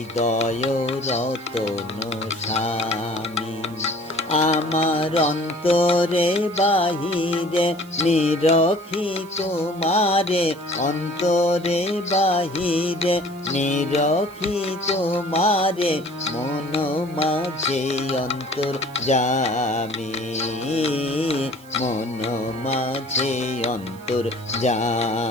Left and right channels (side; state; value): right; noise; hiss, 24 dB below the sound